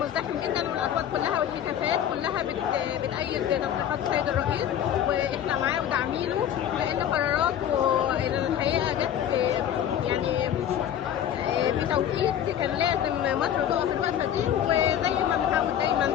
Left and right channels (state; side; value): quieter; right; 10.0 dB